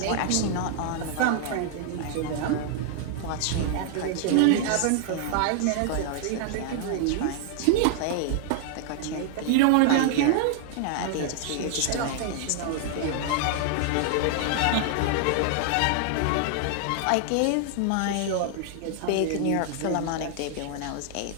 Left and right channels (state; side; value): different; both; correlation 0.00